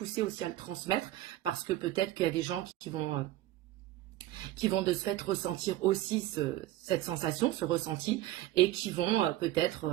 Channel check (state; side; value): quieter; left; 15.0 dB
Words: aussi à le transmettre parce que peut-être qu'il y a des gens qui vont de ce fait ressentir aussi cette sensation, ce ressenti, et qui vont